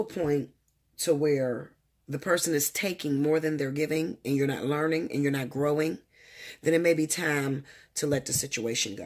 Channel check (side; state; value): both; identical; correlation 1.00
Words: a point to where the person is taking more than they're giving and you're not learning and you're not growing, then it may be time to let the situation